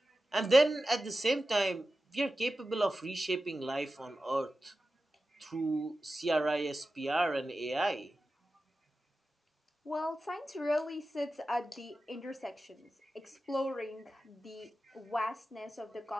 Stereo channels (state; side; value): normal; both; correlation 0.93